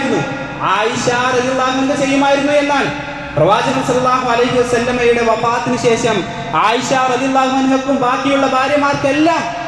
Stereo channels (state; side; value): identical; both; correlation 1.00